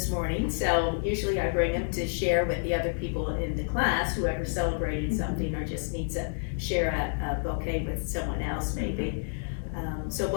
morning, so usually I bring them to share with the other people in the class, whoever's celebrating something or just needs to share a bouquet with someone else maybe. So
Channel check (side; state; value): right; silent; digital silence